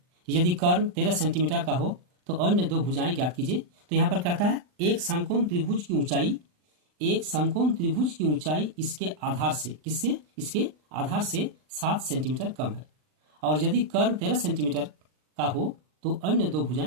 यदि कर्ण 13 सेंटीमीटर का हो तो अन्य दो भुजाएं ज्ञात कीजिए। तो यहाँ पर कहता है एक समकोण त्रिभुज की ऊंचाई, एक समकोण त्रिभुज की ऊंचाई इसके आधार से, किससे, इसके आधार से 7 सेंटीमीटर कम है, और यदि कर्ण 13 सेंटीमीटर का हो तो अन्य दो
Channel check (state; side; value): late; left; 39 ms